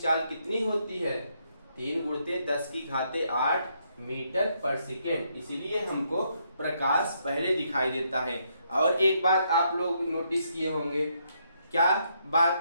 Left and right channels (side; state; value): both; inverted; correlation -0.75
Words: कितनी होती है, 3 × 10⁸ मीटर पर सेकेंड, इसीलिए हमको प्रकाश पहले दिखाई देता है। और एक बात आप लोग नोटिस किए होंगे, क्या